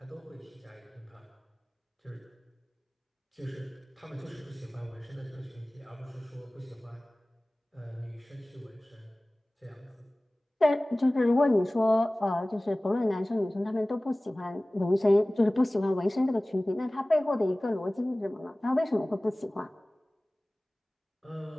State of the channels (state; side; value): normal; both; correlation 0.98